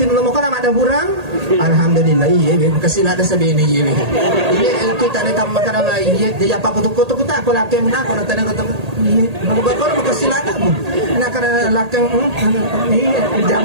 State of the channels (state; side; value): late; left; 1.8 ms